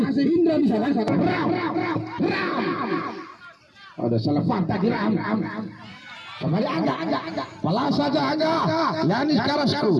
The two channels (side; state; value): both; identical; correlation 1.00